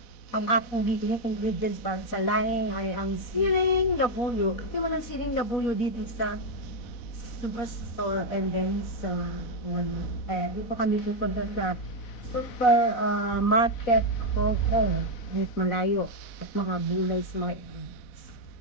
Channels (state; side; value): late; right; 4.0 ms